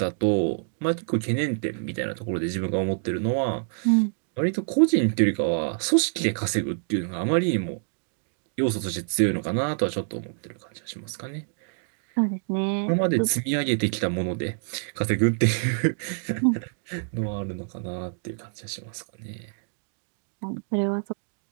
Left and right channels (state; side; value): silent; left; digital silence